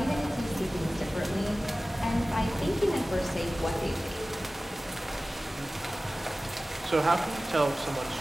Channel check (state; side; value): normal; both; correlation 0.97